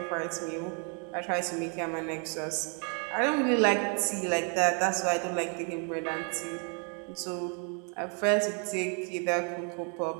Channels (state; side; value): quieter; left; 38.7 dB